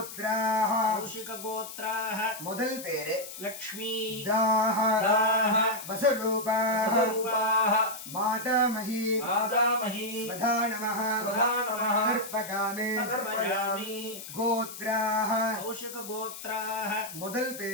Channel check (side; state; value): left; noise; hiss, 11 dB below the sound